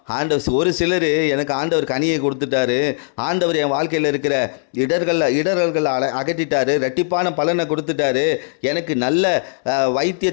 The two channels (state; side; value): silent; right; 66 dB below the other